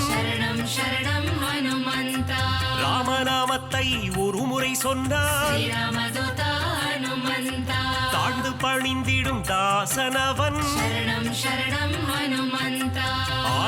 சரணம் சரணம் ஹனுமந்தா, ராமநாமத்தை ஒரு முறை சொன்னால் ஸ்ரீராமதூதா ஹனுமந்தா, தாழ்ந்து பணிந்திடும் தாசனவன், சரணம் சரணம் ஹனுமந்தா,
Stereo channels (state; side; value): identical; both; correlation 1.00